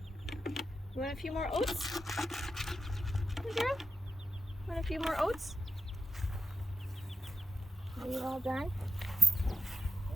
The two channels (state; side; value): normal; both; correlation 0.90